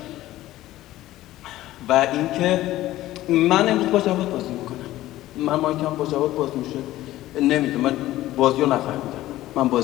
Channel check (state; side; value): quieter; right; 15.4 dB